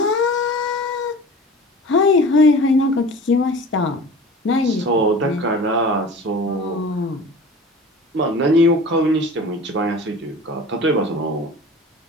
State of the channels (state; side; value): normal; both; correlation 0.39